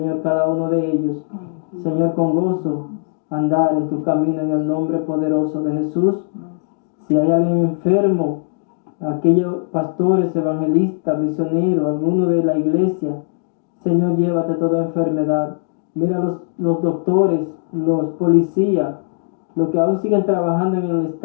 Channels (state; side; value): silent; right; digital silence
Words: cada uno de ellos, Señor, con gozo andar en tu camino en el nombre poderoso de Jesús. Si hay alguien enfermo, aquellos pastores, evangelistas, misioneros, alguno de la iglesia, Señor, llévate toda enfermedad. Mira los doctores, los policías, los que aún siguen trabajando en el